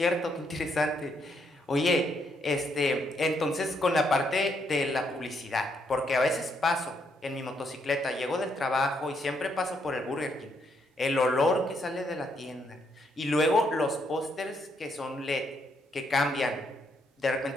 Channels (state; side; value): normal; both; correlation 0.75